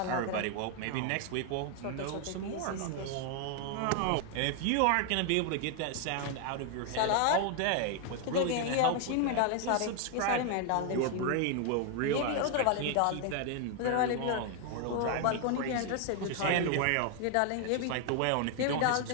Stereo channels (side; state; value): both; different; correlation 0.00